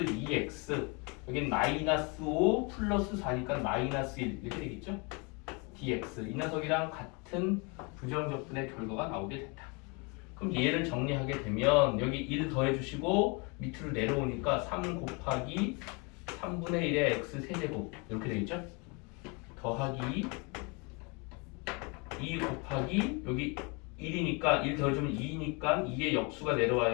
여긴 마이너스 5 플러스 4니까 마이너스 1 이렇게 되겠죠. dx 이 녀석이랑 같은 부정적분의 결과가 나오게 된다. 그럼 얘를 정리하게 되면 여기 1 더해주시고 밑으로 내려오니까 3 곱하기 3분의 1의 x 세제곱 이렇게 되겠죠. 더하기 2 곱하기 여기 1이니까 1 더해주면 2니까 2의 역수가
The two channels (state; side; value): quieter; right; 31.1 dB